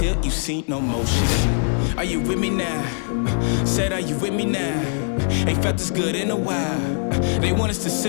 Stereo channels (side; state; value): right; silent; 56 dB below the other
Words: you see no motion. Are you with me now? Said, are you with me now? Ain't felt this good in a while. They want us to